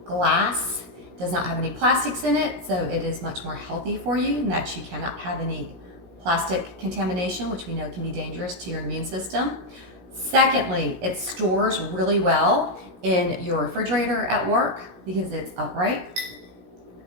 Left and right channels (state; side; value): late; left; 16 ms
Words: glass does not have any plastics in it, so it is much more healthy for you, and that you cannot have any plastic contamination, which we know can be dangerous to your immune system. Secondly, it stores really well in your refrigerator at work because it's upright.